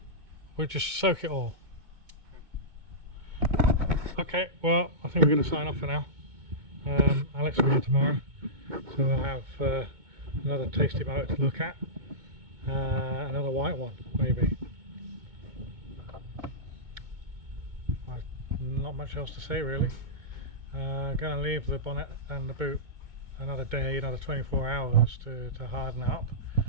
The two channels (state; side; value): late; left; 2.2 ms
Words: We'll just soak it all. Okay, well, I think we're going to sign off for now. Alex will be here tomorrow, so we'll have another tasty motor to look at. Another white one, maybe. Not much else to say, really. Going to leave the bonnet and the boot another day, another 24 hours to harden it up,